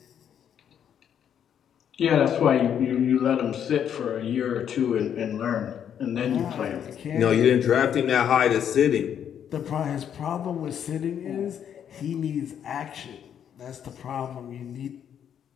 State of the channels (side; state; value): right; quieter; 8.9 dB